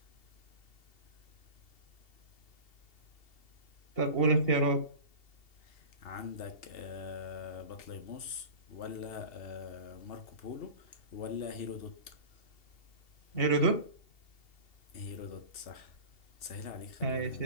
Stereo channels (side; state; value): right; late; 2.7 ms